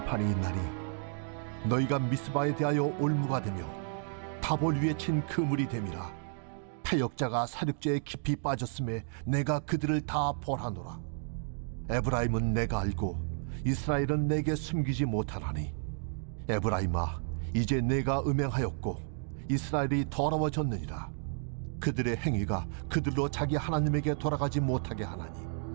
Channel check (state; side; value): silent; left; 56 dB below the other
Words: 있나니 너희가 미스바에 대하여 올무가 되며 다볼 위에 친 그물이 됨이라. 패역자가 사륙제에 깊이 빠졌음에 내가 그들을 다 벌하노라. 에브라임은 내가 알고 이스라엘은 내게 숨기지 못하나니, 에브라임아, 이제 내가 음행하였고 이스라엘이 더러워졌느니라. 그들의 행위가 그들로 자기 하나님에게 돌아가지 못하게 하나니,